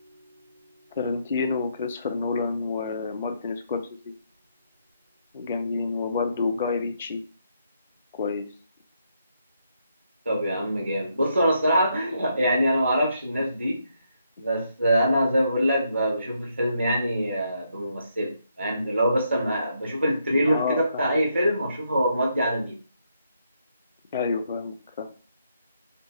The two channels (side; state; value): both; inverted; correlation -0.77